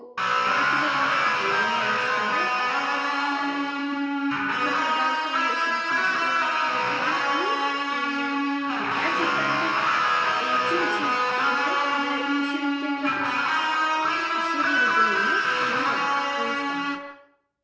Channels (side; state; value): both; identical; correlation 1.00